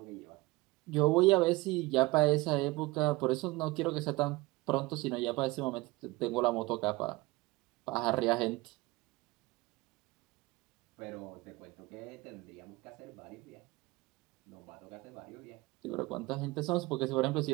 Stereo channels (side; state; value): left; quieter; 21.9 dB